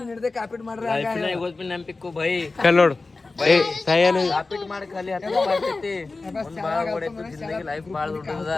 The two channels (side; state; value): right; quieter; 3.6 dB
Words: ಹಿಡ್ದೆ ಕಾಪಿಟ್ ಮಾಡ್ರಿ. ನೆನಪಿಕ್ಕು ಬೈ ನೋಡು ಏ ಸಾಯನ ರಾಪಿಡ್ ಮಾಡಿ ಖಾಲಿ ಹತ್ತು ಮಾಡ್ತೈತಿ ಒಂದ್ ಬಾಳ ಓಡೈತಿ ಜಿಂದಗಿ ಲೈಫ್ ಬಾಳ ದೊಡ್ಡದ